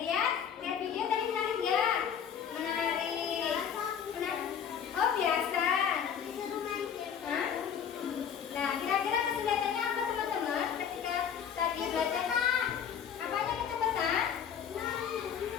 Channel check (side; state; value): right; quieter; 8.1 dB